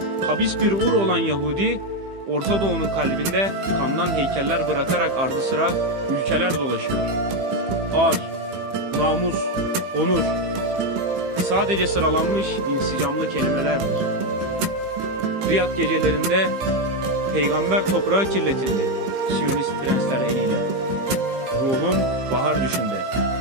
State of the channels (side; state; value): left; late; 15 ms